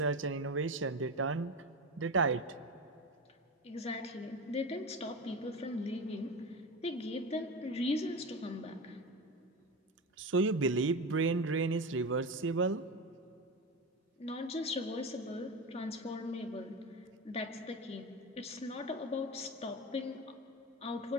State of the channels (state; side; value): normal; both; correlation 0.23